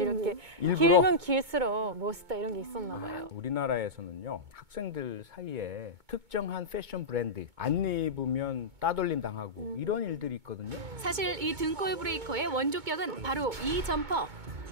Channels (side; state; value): left; late; 2.2 ms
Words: 일부러? 길면 길수록 멋있다 이런 게 있었나 봐요. 우리나라에서는요, 학생들 사이에 특정한 패션 브랜드 안 입으면 따돌림 당하고 이런 일들이 있거든요. 사실 이 등골 브레이커의 원조격은 바로 이 점퍼.